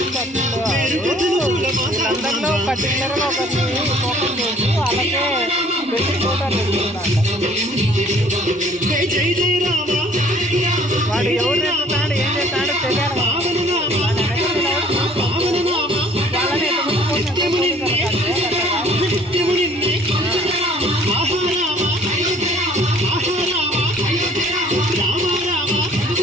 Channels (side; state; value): both; normal; correlation 0.55